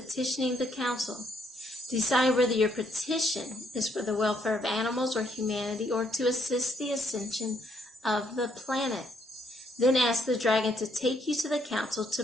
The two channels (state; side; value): normal; both; correlation 0.72